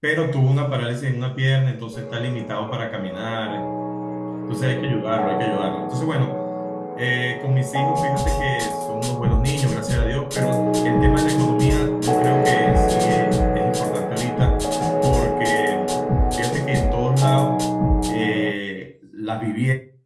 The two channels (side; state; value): both; identical; correlation 1.00